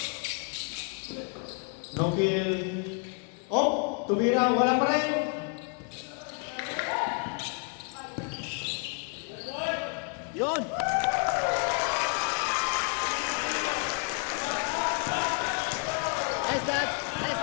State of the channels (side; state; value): right; quieter; 39.3 dB